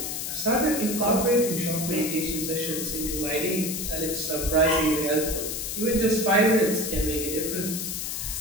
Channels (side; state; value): left; noise; hiss, 4 dB below the sound